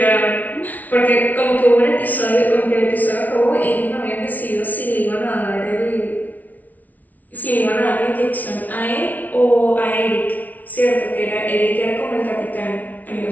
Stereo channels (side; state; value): right; late; 0.076 ms